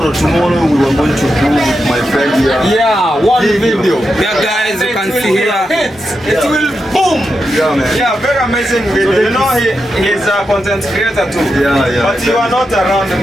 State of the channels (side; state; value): both; normal; correlation 0.87